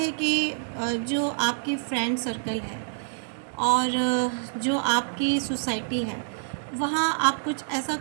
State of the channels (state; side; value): silent; left; digital silence